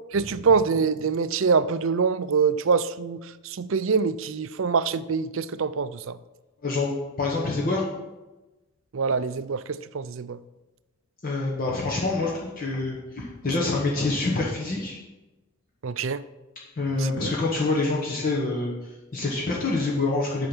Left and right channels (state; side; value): normal; both; correlation 0.04